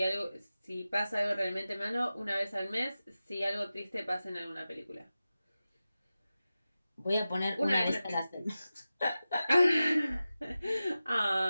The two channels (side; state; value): both; inverted; correlation -0.94